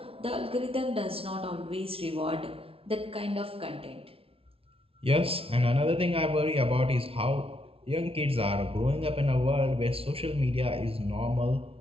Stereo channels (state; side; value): late; left; 0.27 ms